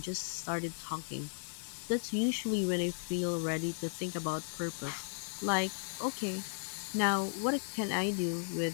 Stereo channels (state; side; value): silent; right; 54 dB below the other